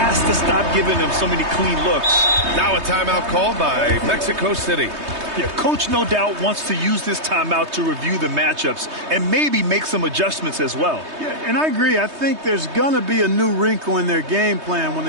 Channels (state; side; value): late; left; 3.2 ms